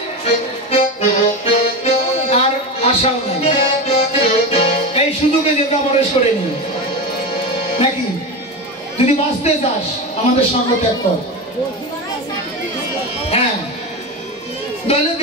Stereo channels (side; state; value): both; normal; correlation 0.21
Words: আর আশাও নাই, এই সুযোগে যেটা প্রবেশ করে নি। নাকি? যদি বাঁচতে চাস আমাদের সঙ্গ ত্যাগ কর। হ্যাঁ, তাহলে